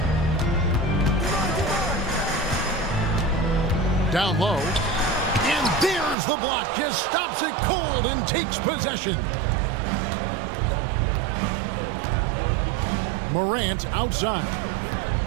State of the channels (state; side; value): drops out; left; at 6.2 s